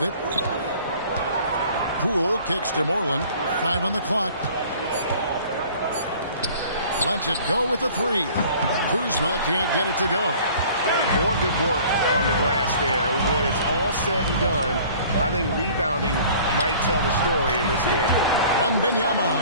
it. Poole kicks to Moreland. 5 on the clock. Lets it go with a 3. Kuzma can't get it to go. More good work on the glass there. When it's all said and done, I think rebounding might tell the story in this game.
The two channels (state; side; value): inverted; both; correlation -0.50